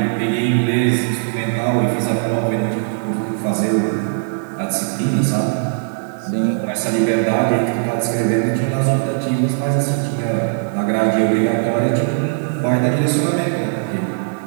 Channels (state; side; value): silent; left; 64 dB below the other